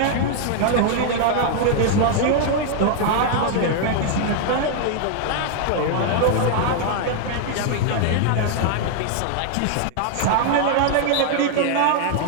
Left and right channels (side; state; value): both; different; correlation 0.00